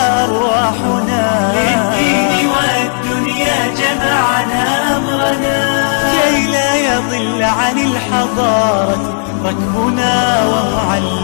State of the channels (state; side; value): silent; right; digital silence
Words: أرواحنا، للدين والدنيا جمعنا أمرنا كي لا يضل عن الحضارة ركبنا.